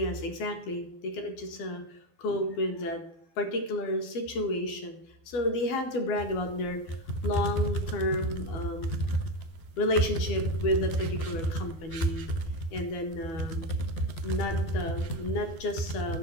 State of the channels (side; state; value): right; late; 12 ms